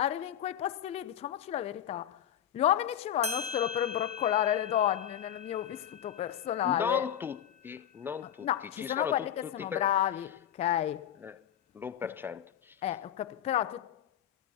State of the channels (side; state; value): right; quieter; 10.3 dB